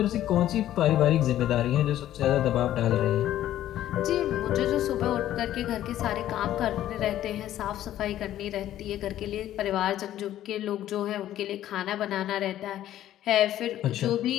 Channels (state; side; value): quieter; right; 12.6 dB